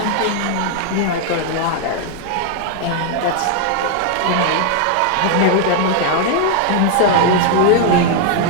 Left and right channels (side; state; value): both; different; correlation 0.00